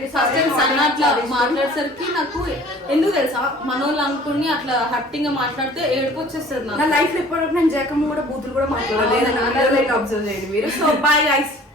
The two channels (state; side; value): normal; both; correlation 0.49